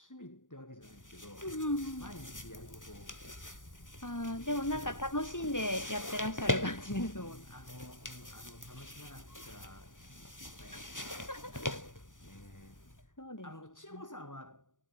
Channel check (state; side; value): late; right; 0.88 ms